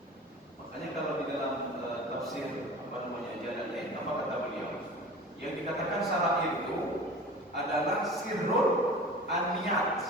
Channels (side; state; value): both; normal; correlation 0.38